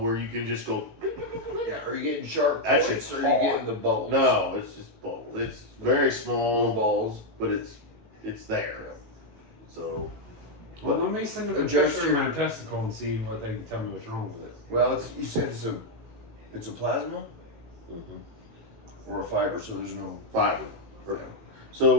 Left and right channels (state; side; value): late; left; 18 ms